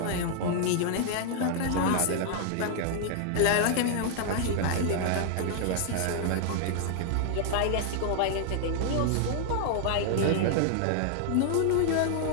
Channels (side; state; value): both; different; correlation 0.00